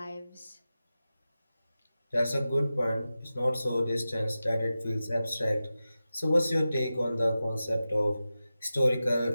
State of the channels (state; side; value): inverted; both; correlation -0.94